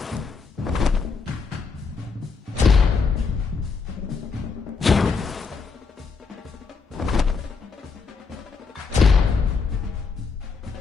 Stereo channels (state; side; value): quieter; right; 5.0 dB